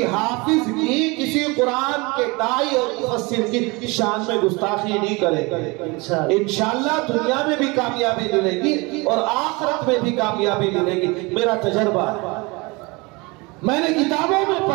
हाफिज की, किसी कुरान के दाई और मुफस्सिर की शान में गुस्ताखी नहीं करेंगे। इंशाअल्लाह दुनिया में भी कामयाबी मिलेगी और आखिरत में भी कामयाबी मिलेगी। मेरा तजर्बा है, मैंने किताबों में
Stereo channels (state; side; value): quieter; left; 26.0 dB